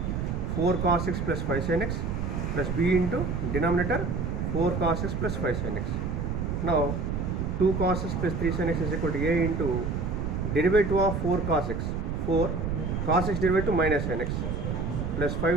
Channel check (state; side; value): noise; right; rumble, 2 dB below the sound